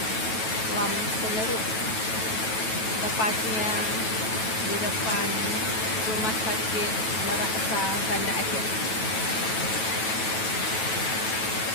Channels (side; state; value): right; late; 9.2 ms